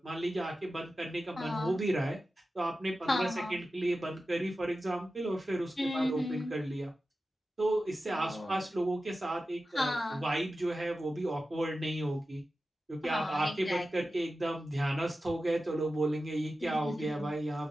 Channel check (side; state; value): both; normal; correlation 0.93